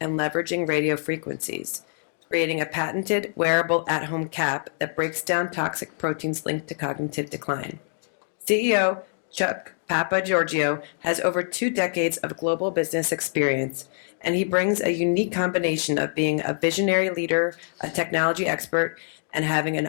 and leveraging radio frequencies, creating a patented wearable at-home cap that breaks down toxic proteins linked to cognitive decline. CEO Chuck Papgeorgiou has over 2 decades of global business experience, and he brings a unique combination of being a visionary leader, a technology expert, and having an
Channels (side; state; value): right; silent; digital silence